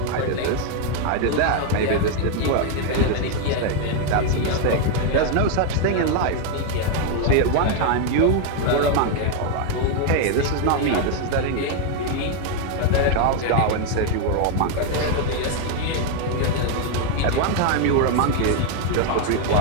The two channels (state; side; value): different; both; correlation 0.01